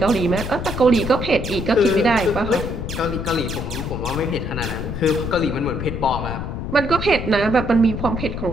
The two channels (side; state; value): left; noise; rumble, 5 dB below the sound